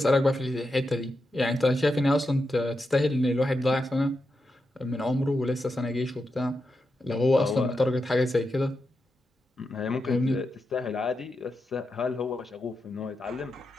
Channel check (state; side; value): normal; both; correlation 0.87